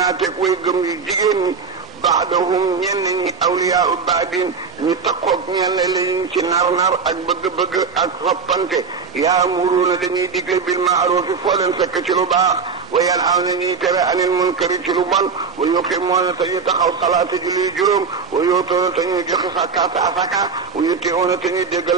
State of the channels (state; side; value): quieter; left; 5.3 dB